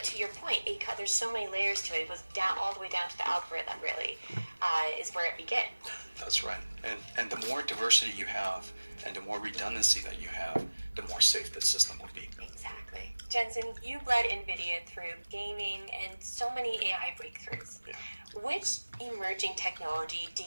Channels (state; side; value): inverted; both; correlation -1.00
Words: to your point, there's so many layers to it. It was down all the way down to the algorithm. Really, is where it begins. That's right. And the more diversity you have, and the more redundancy that you have, the more safe the system will be. Exactly. Jensen, you led NVIDIA through gaming and so many AI breakthroughs. Yeah. Which emerging technology do